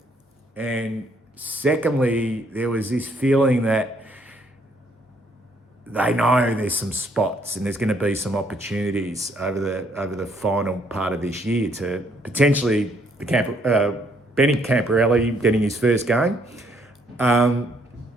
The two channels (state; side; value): normal; both; correlation 0.68